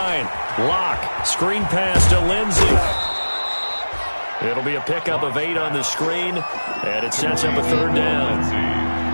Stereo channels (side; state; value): both; inverted; correlation -1.00